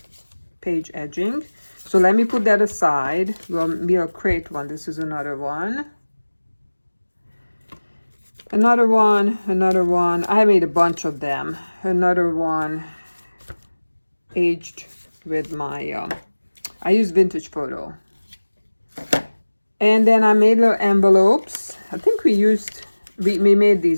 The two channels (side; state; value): both; inverted; correlation -1.00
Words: page edging. So let me put that aside. We'll create one. This is another one. Another one, another one. I made a bunch of them. Another one aged with my, I use vintage photo. And then I made little envelopes. I think we made